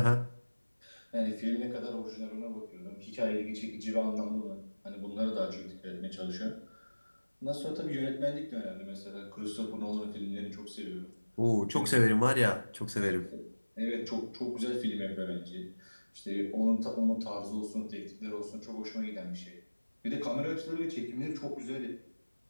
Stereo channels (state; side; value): inverted; both; correlation -1.00